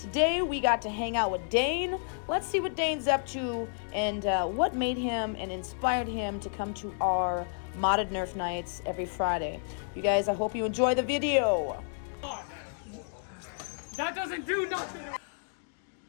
we got to hang out with Dane. Let's see what Dane's up to and what made him and inspired him to come to our modded Nerf nights every Friday. You guys, I hope you enjoy the video. That doesn't do nothing!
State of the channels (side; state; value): right; silent; digital silence